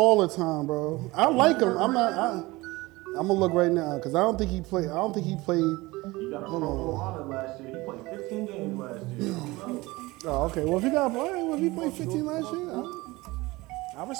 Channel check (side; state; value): left; quieter; 21.2 dB